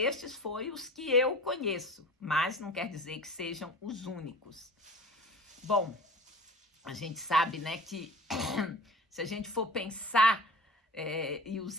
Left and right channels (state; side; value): normal; both; correlation 0.38